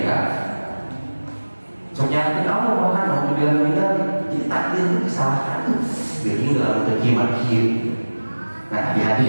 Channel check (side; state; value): both; inverted; correlation -1.00